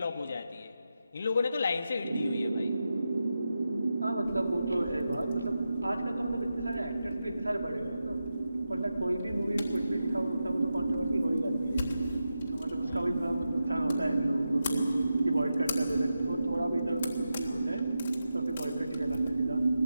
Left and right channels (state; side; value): inverted; both; correlation -0.90